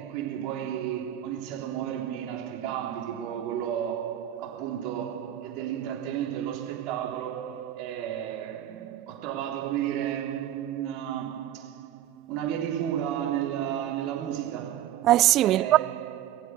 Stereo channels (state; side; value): quieter; left; 11.8 dB